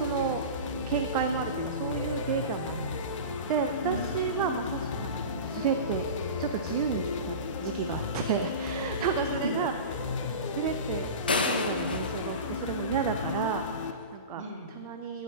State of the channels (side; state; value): both; inverted; correlation -0.30